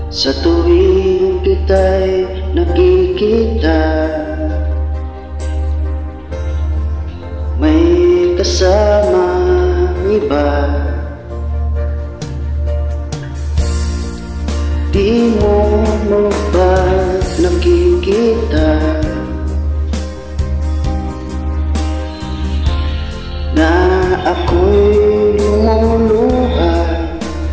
sa tuwing kita'y nakikita? May kasamang iba. Di mo ba nakikita na ako'y lumuluha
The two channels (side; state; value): both; identical; correlation 1.00